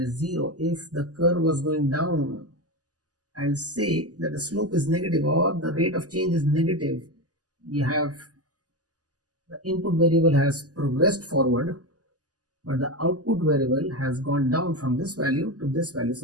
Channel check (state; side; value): late; left; 0.67 ms